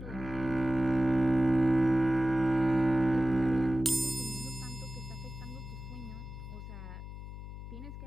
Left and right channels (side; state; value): left; noise; hum, 11 dB below the sound